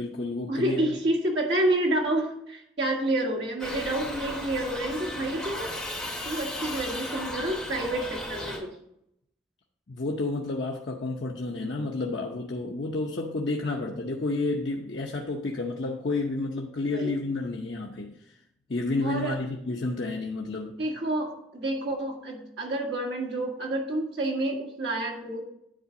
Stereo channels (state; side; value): normal; both; correlation 0.49